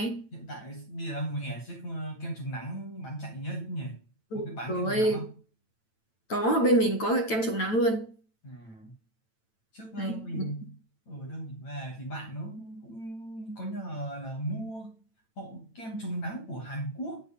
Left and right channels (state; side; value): late; right; 9.0 ms